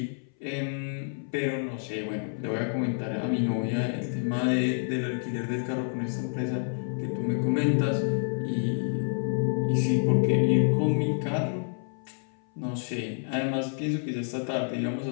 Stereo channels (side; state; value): right; silent; 59 dB below the other